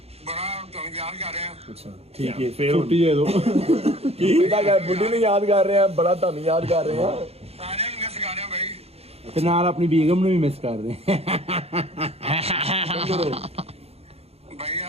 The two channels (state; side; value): late; left; 0.29 ms